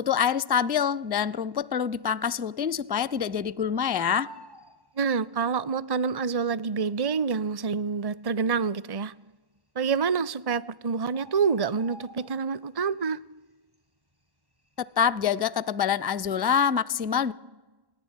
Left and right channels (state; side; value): late; left; 1.1 ms